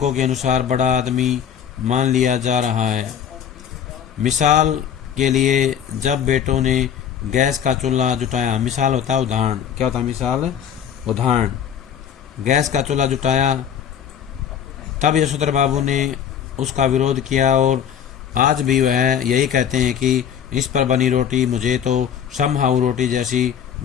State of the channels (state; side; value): quieter; right; 8.7 dB